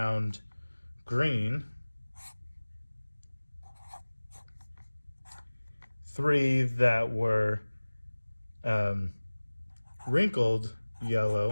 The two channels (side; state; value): both; inverted; correlation -1.00